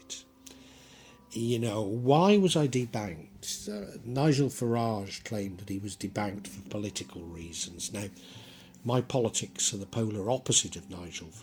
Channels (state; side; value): identical; both; correlation 1.00